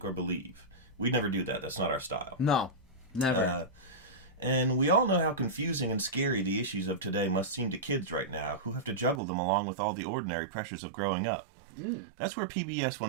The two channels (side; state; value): left; drops out; at 9.2 s